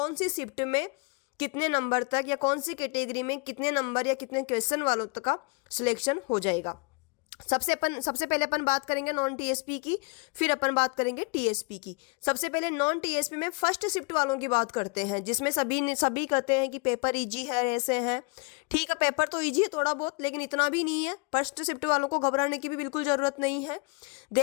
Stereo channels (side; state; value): right; quieter; 31.4 dB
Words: सी शिफ्ट में कितने नंबर तक या कौन सी कैटेगरी में कितने नंबर या कितने क्वेश्चन वालों तक का सिलेक्शन हो जाएगा। सबसे पहले अपन बात करेंगे नॉन टीएसपी की, फिर अपन बात करेंगे टीएसपी की। सबसे पहले नॉन टीएसपी में फर्स्ट शिफ्ट वालों की बात करते हैं, जिसमें सभी कहते हैं कि पेपर इजी है, ऐसे हैं। ठीक है, पेपर तो इजी है थोड़ा बहुत, लेकिन इतना भी नहीं है। फर्स्ट शिफ्ट वालों को घबराने की भी बिल्कुल ज़रूरत नहीं है।